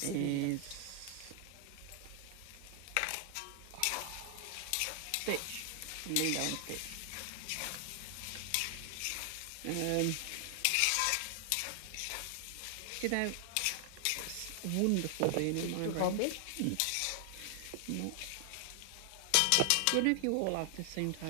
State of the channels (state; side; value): different; both; correlation 0.00